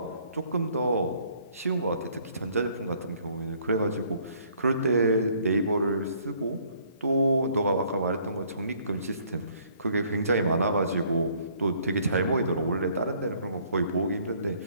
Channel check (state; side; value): inverted; both; correlation -0.62